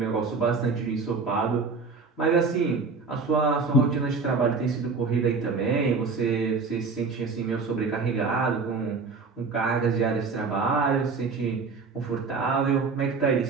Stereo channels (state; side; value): quieter; left; 4.5 dB